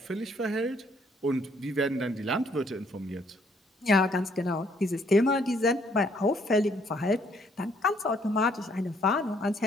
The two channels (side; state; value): both; normal; correlation 0.66